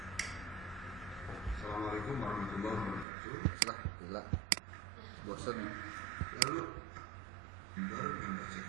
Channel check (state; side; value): drops out; left; at 3.1 s